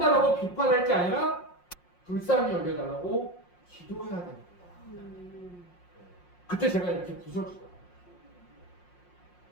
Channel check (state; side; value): late; right; 5.6 ms